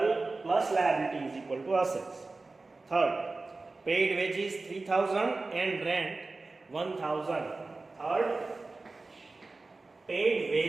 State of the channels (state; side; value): quieter; left; 3.5 dB